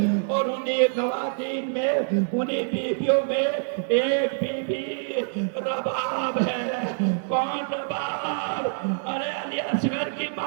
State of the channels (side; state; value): left; silent; digital silence